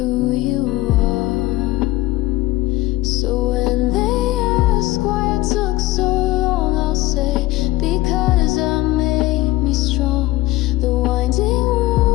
you are. So when they ask why I took so long, I'll say, because I made me strong. The winding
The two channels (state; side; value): quieter; right; 17.7 dB